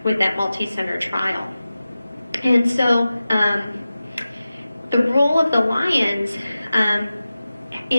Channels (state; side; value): inverted; both; correlation -0.95